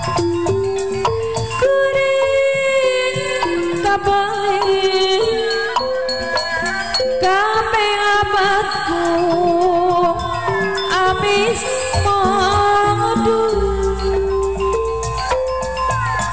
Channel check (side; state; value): both; identical; correlation 1.00